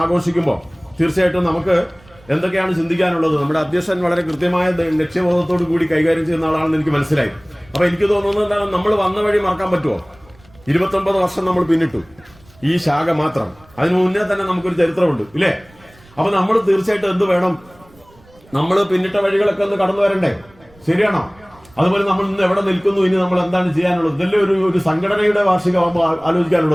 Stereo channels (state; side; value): noise; right; rumble, 28 dB below the sound